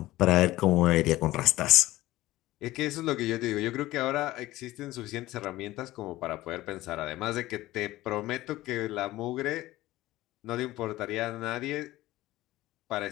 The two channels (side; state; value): right; quieter; 17.0 dB